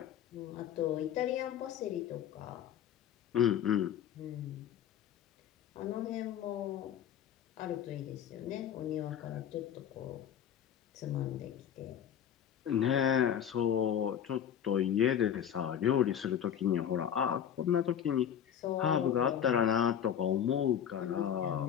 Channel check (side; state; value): right; quieter; 9.2 dB